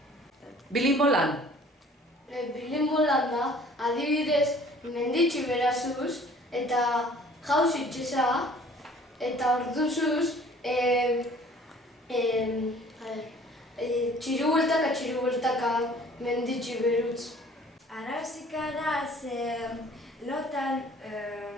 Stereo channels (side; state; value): both; normal; correlation 0.52